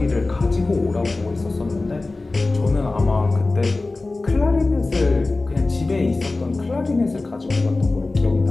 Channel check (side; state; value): right; quieter; 3.3 dB